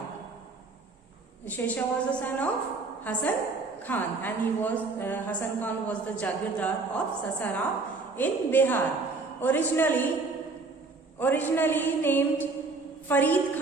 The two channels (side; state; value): left; quieter; 3.8 dB